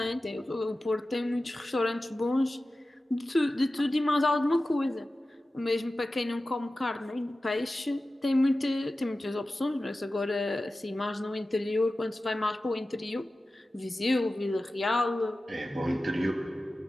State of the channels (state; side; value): normal; both; correlation 0.95